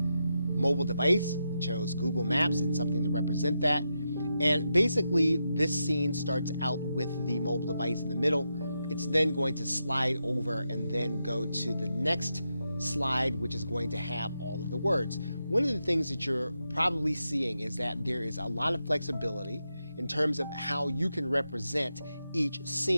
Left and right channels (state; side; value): inverted; both; correlation -0.86